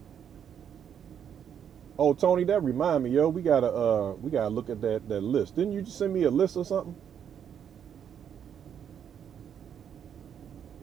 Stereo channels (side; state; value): left; quieter; 8.6 dB